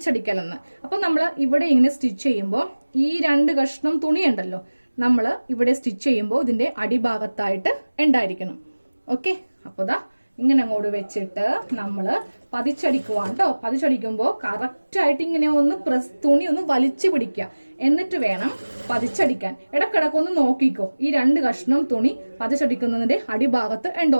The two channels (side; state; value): both; inverted; correlation -1.00